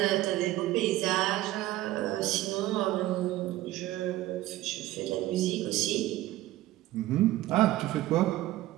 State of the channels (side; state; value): left; quieter; 16.1 dB